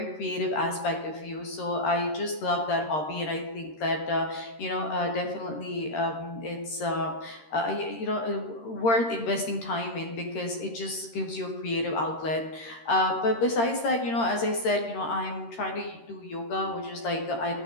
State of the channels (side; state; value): right; late; 13 ms